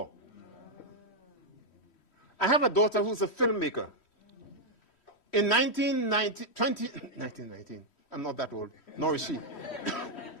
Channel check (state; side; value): late; right; 3.1 ms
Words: I have a daughter who's a filmmaker. In 1919, I'm not that old, nor is she.